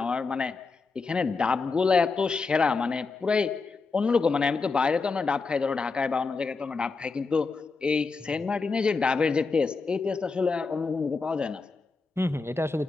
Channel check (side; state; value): right; quieter; 4.4 dB